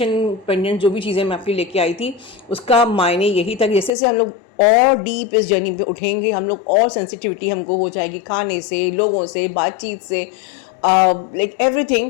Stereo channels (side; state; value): right; drops out; at 3.9 s